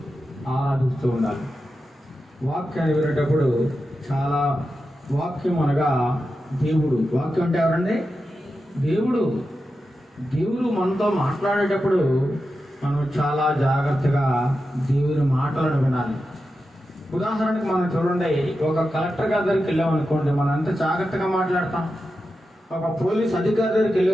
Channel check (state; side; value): normal; both; correlation 0.90